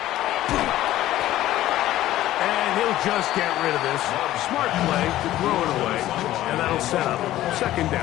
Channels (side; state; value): right; quieter; 14.4 dB